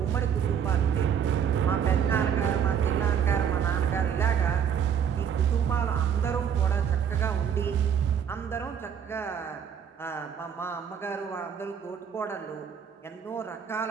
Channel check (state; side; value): quieter; left; 8.0 dB